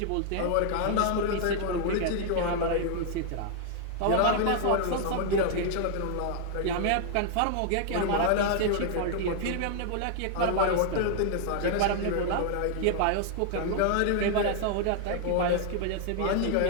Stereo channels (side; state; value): both; different; correlation 0.00